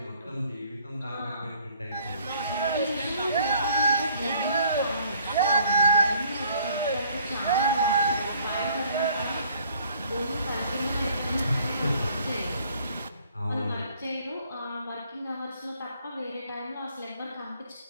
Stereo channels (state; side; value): inverted; both; correlation -0.59